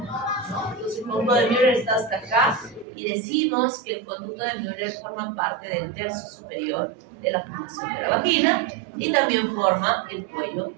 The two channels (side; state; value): left; drops out; at 2.9 s